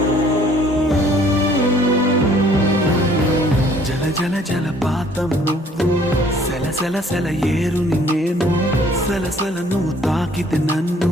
జల జల జలపాతం నువ్వు సెల సెల సెల ఏరుని నేను సలసల నువ్వు తాకితే నన్ను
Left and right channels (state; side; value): normal; both; correlation 0.58